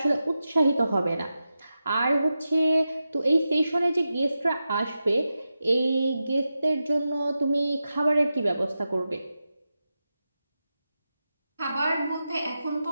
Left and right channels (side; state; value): both; inverted; correlation -0.91